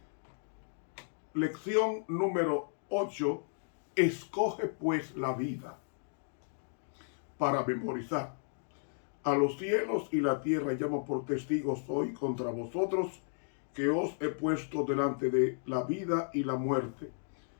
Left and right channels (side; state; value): right; silent; digital silence